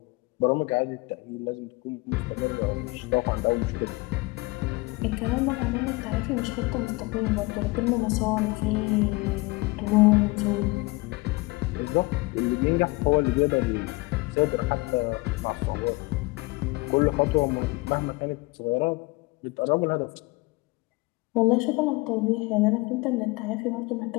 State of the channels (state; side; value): quieter; right; 24.2 dB